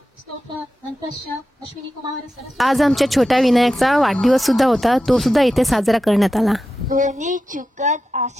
स्तोत्र अन्तस्य अश्विनी कुमार सरस्वती। आज आमच्या छोट्या विनायकचा वाढदिवस सुद्धा होता, तो सुद्धा इथे साजरा करण्यात आला। कोणी चुकत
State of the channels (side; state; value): both; normal; correlation 0.91